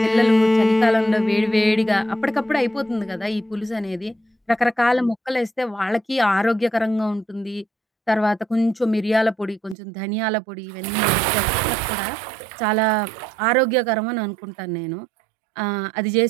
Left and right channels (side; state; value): left; drops out; at 9.8 s